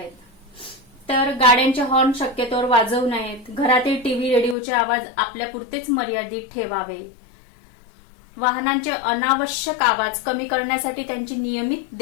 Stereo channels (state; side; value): drops out; right; at 4.5 s